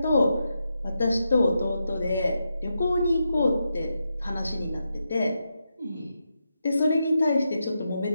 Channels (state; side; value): inverted; both; correlation -0.86